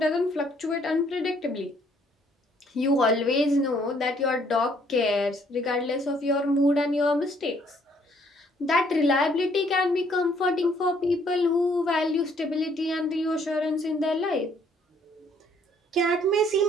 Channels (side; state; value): both; normal; correlation 0.64